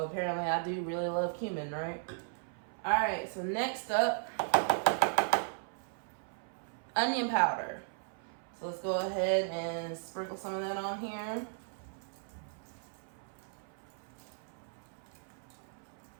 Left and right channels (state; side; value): silent; left; 54 dB below the other